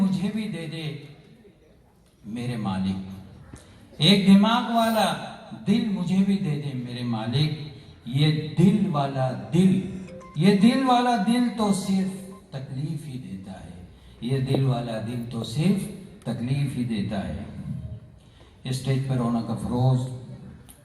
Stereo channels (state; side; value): identical; both; correlation 1.00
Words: भी दे दे मेरे मालिक, एक दिमाग वाला दिल मुझे भी दे दे मेरे मालिक। ये दिल वाला दिल तो सिर्फ तकलीफ ही देता है, ये दिल वाला दिल तो सिर्फ तकलीफ ही देता है। स्टेज पर रौनक अफरोज